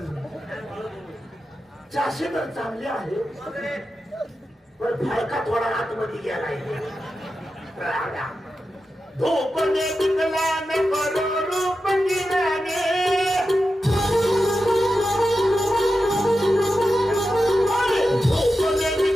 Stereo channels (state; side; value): normal; both; correlation 0.91